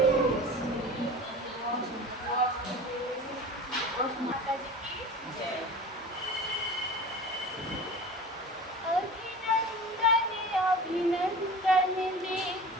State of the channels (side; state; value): both; normal; correlation 0.36